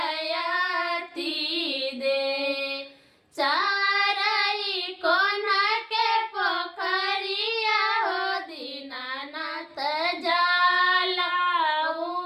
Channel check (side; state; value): both; identical; correlation 1.00